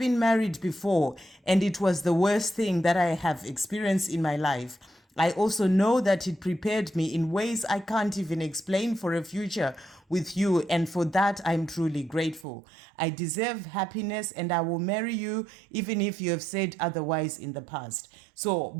married before, and it was the worst thing that I have experienced in my life. I also know that it prepared me in ways I can't even explain for a future with you, and for that I'm truly grateful. I deserve happiness, and I will marry you even if you have said otherwise in the past. So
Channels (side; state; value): left; drops out; at 12.5 s